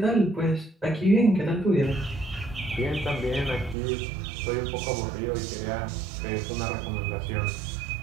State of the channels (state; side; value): drops out; left; at 3.8 s